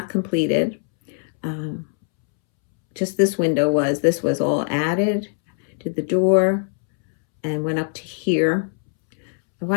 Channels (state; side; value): silent; right; 65 dB below the other